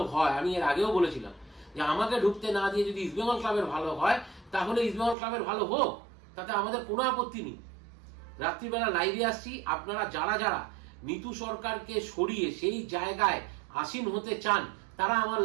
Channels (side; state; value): left; drops out; at 5.2 s